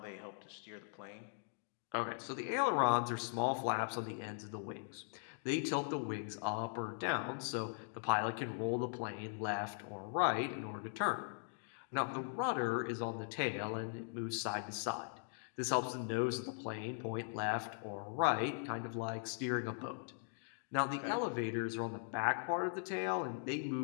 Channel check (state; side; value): silent; right; digital silence